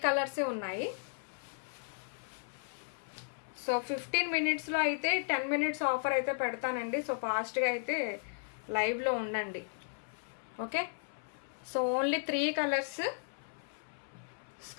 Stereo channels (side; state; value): right; silent; 54 dB below the other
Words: కలర్సే ఉన్నాయి. సో 15 మినిట్స్లో అయితే 10 మినిట్స్ ఆఫర్ అయితే పెడతానండి. సో ఫాస్ట్గా అయితే లైవ్లో ఉండండి. Okay, so only 3 colours.